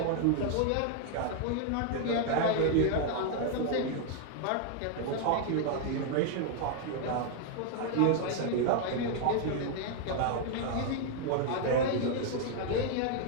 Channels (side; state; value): both; different; correlation 0.00